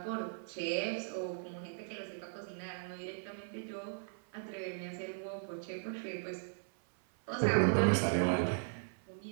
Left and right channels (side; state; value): left; silent; 53 dB below the other